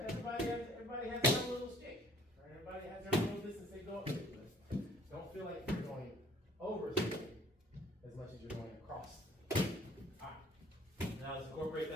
Everybody has their own little stick. Right? Everybody has their own little distance they go up to. But don't feel like you're going over something as much as you're going across. Alright. Now let's incorporate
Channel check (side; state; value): both; normal; correlation 0.56